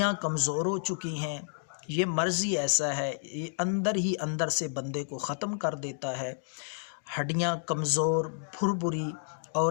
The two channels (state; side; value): silent; right; digital silence